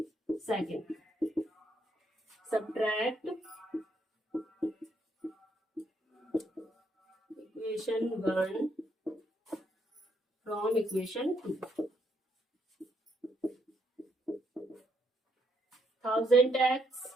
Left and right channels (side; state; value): both; normal; correlation 0.74